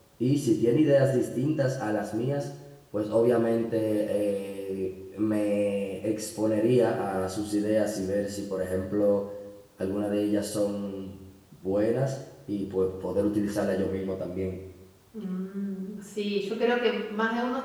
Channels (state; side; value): identical; both; correlation 1.00